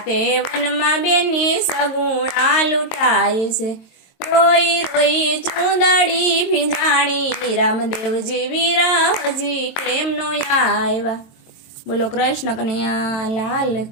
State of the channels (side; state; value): right; late; 22 ms